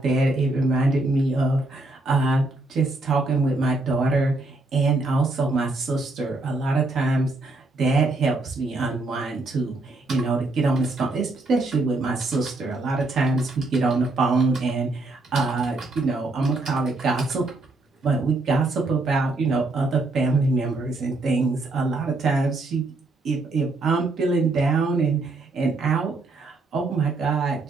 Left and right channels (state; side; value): quieter; left; 3.1 dB